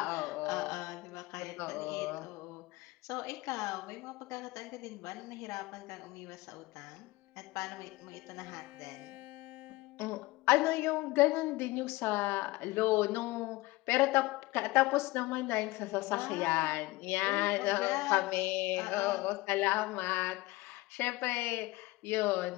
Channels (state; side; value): quieter; right; 20.6 dB